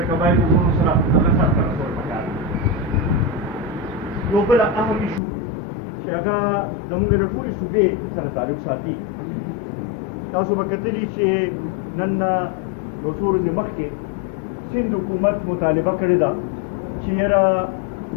قبایلو وروڼو سره هغه سرته رسول پکار یو بل اهم ایشو چې هغه زموږ د ټولې صوبې سره تعلق ساتي. تاسو به کتلي چې نن یو څو ورځې مخکې سند حکومت مطالبه کړې ده چې یاره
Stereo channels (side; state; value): right; drops out; at 5.2 s